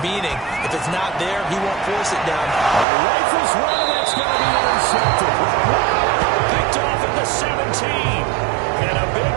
if it's not there, he won't force it down. Rifles one, that's going to be intercepted. Picked off at the 17. And a big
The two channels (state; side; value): drops out; left; at 2.9 s